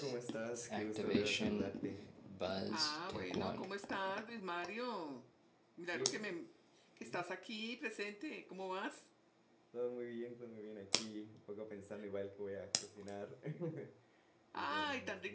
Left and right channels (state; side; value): identical; both; correlation 1.00